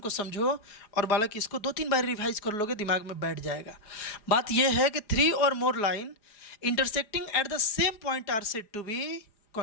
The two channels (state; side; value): late; right; 4.9 ms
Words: समझो और बालक इसको 2-3 बार रिवाइज कर लोगे, दिमाग में बैठ जाएगा। बात यह है कि थ्री और more line intersecting at the same point are said to be